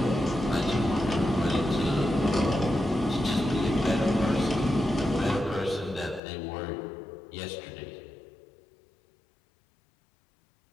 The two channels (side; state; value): right; drops out; at 6.2 s